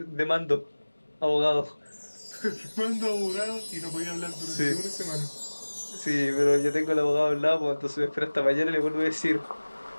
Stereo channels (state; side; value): inverted; both; correlation -1.00